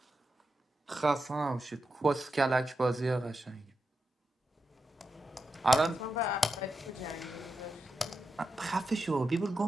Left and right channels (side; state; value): both; normal; correlation 0.88